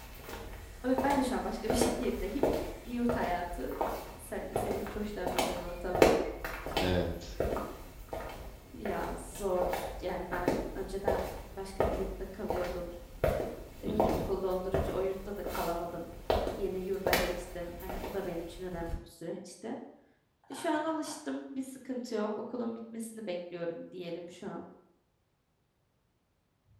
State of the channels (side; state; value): both; identical; correlation 1.00